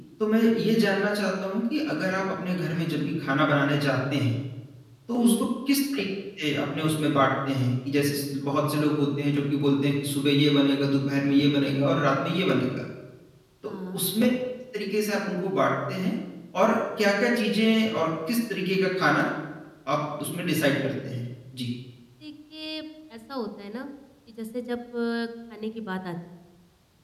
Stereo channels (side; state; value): both; identical; correlation 1.00